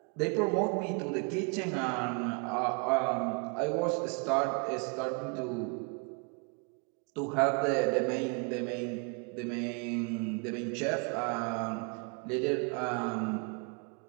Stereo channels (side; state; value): left; quieter; 35.3 dB